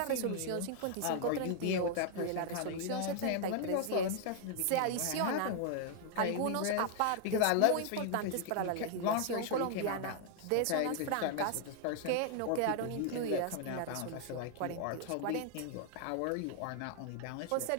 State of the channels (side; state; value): both; different; correlation 0.00